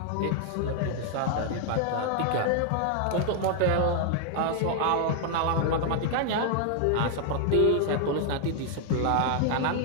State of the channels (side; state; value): both; different; correlation 0.00